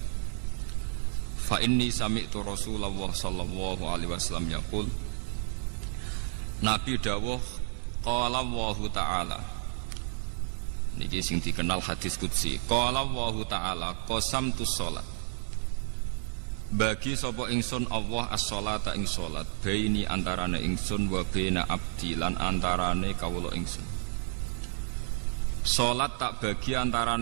fa inni sami'tu Rasulullah sallallahu alaihi wasallam yaqul. Nabi dawuh qala Allahu ta'ala, niki sing dikenal hadis qudsi, qala Allahu ta'ala qasamtu sholat, bagi sapa ingsun Allah as-sholata ing sholat, baini antarane ingsun wa baina abdi lan antarane kawula ingsun. Sholat tak bagi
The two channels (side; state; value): left; silent; 57 dB below the other